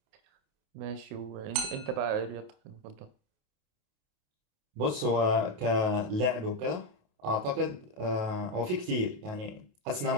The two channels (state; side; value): late; left; 28 ms